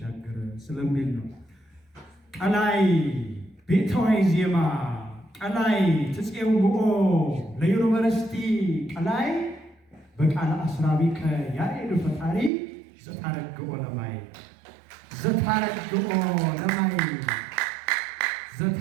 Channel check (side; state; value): left; drops out; at 12.5 s